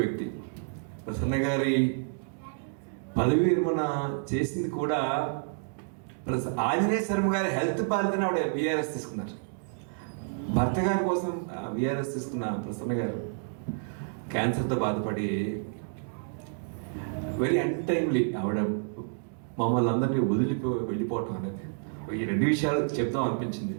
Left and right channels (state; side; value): silent; left; digital silence